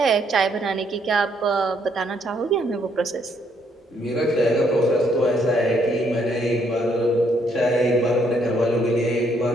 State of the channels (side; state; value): both; normal; correlation 0.70